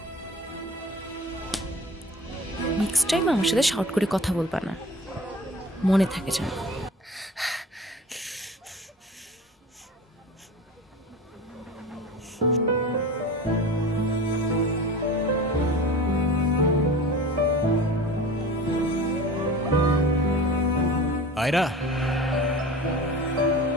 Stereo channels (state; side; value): normal; both; correlation 0.37